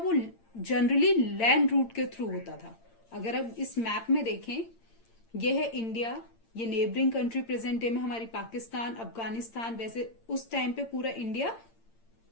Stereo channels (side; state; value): right; late; 8.8 ms